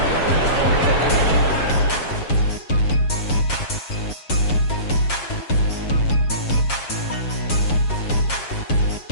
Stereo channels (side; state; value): right; late; 7.4 ms